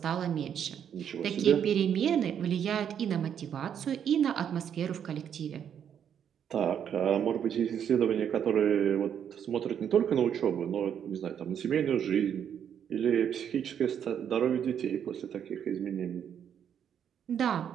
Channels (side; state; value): left; quieter; 8.7 dB